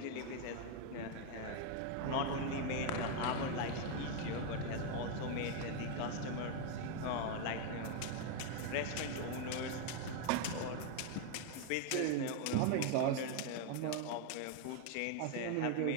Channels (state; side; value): different; both; correlation 0.01